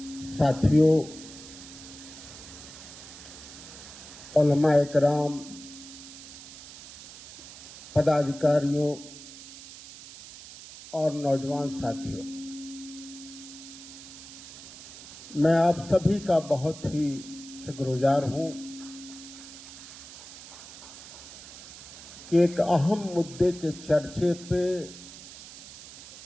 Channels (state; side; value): noise; right; hiss, 15 dB below the sound